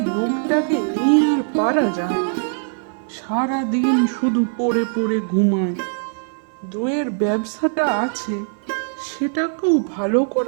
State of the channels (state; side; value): silent; left; 58 dB below the other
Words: লোকটাকে নিয়ে আর পারা যায় না। সারা দিন শুধু পড়ে পড়ে ঘুমায়। দইয়ের ব্যবসাটা আছে, সেটাকেও ভালো